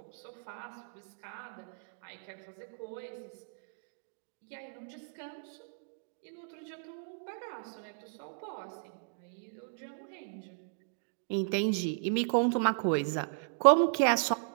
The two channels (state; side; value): silent; left; digital silence